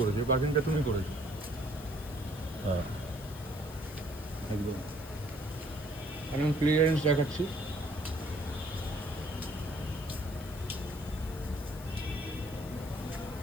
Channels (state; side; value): noise; left; hiss, 17 dB below the sound